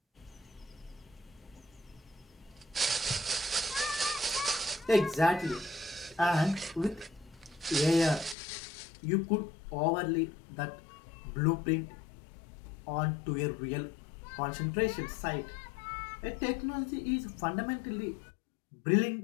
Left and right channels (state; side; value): drops out; right; at 8.3 s